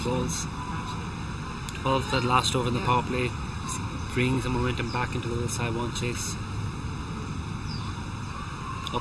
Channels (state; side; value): identical; both; correlation 1.00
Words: balls. 12 that last over in the power play, bringing some momentum back into the Saiwan chase.